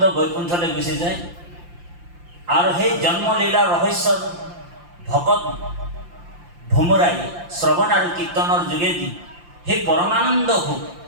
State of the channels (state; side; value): late; left; 5.8 ms